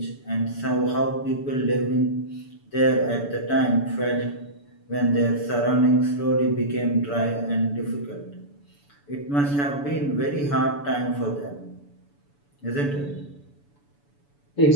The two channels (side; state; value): right; late; 7.0 ms